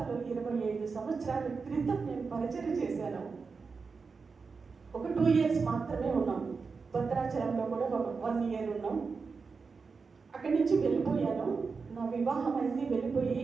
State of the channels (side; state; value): left; quieter; 4.9 dB